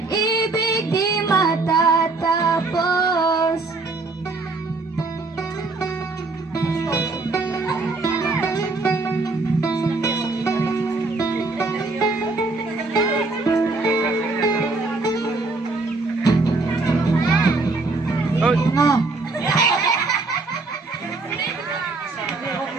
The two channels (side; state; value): left; quieter; 3.5 dB